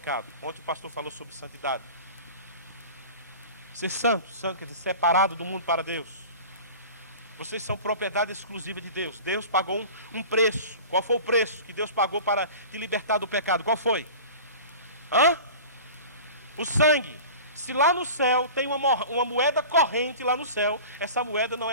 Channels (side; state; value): both; inverted; correlation -0.37